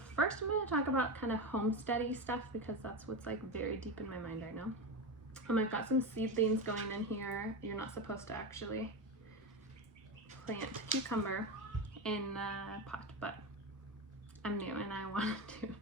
first I'm going to talk about kind of homesteady stuff because that's what's like very deep in my mind right now. I've got some seedlings going in here. You're not supposed to actually plant cucumber in a pot, but I'm new and I want to,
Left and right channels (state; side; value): normal; both; correlation 0.18